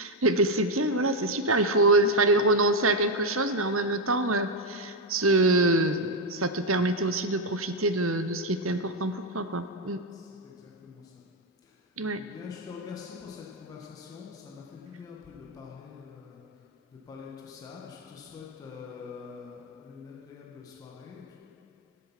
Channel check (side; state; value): both; normal; correlation 0.04